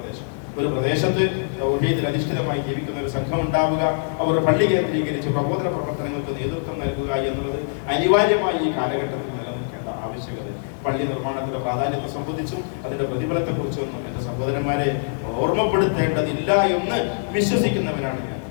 ഒരു പ്രദേശത്ത് തൗഹീദിൽ അധിഷ്ഠിതമായി ജീവിക്കുന്ന ഒരു സംഘം ഉണ്ടാവുക, അവർ പള്ളി കേന്ദ്രീകരിച്ച് പ്രബോധന പ്രവർത്തനങ്ങൾക്ക് നേതൃത്വം നൽകുക എന്നുള്ളത് അനിവാര്യമായി ഈ കാലഘട്ടത്തിൽ നിലനിൽക്കേണ്ട ആവശ്യകത. പള്ളി നിർമ്മാണത്തിന്റെ പ്രാധാന്യത്തെ സംബന്ധിച്ചും അതിന്റെ പ്രതിഫലത്തെക്കുറിച്ചൊന്നും എന്റെ സഹോദരന്മാരെ ഓർമ്മപ്പെടുത്തേണ്ടതില്ല എന്ന് വിശ്വസിക്കുന്നവനാണ് ഞാൻ.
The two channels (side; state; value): right; silent; 59 dB below the other